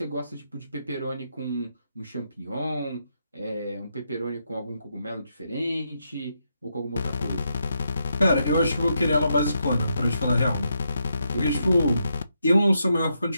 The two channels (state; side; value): inverted; both; correlation -0.81